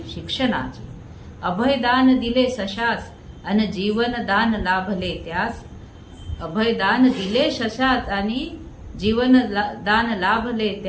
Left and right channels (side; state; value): both; identical; correlation 1.00